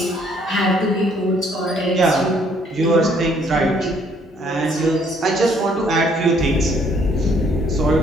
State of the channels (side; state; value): both; normal; correlation 0.65